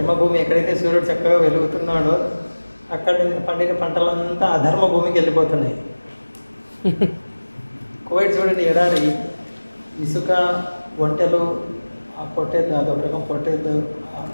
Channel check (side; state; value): both; inverted; correlation -1.00